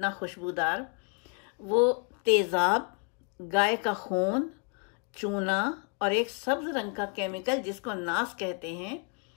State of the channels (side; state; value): right; quieter; 35.0 dB